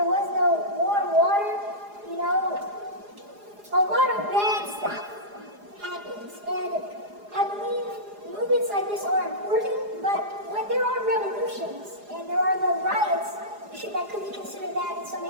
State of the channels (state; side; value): late; left; 4.9 ms